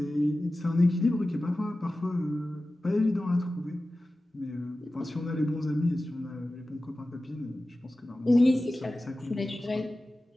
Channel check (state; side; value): normal; both; correlation 0.95